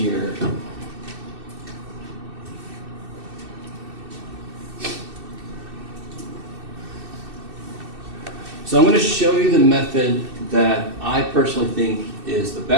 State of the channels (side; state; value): left; late; 2.6 ms